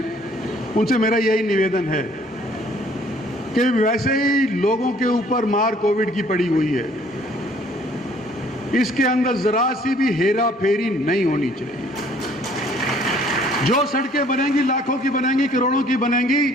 उनसे मेरा यही निवेदन है कि वैसे ही लोगों के ऊपर मार कोविड की पड़ी हुई है, इसके अंदर जरा सी भी हेरा फेरी नहीं होनी चाहिए। जो सड़कें बनेंगी लाखों की बनेंगी, करोड़ों की बनेंगी,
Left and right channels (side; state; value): both; normal; correlation 0.59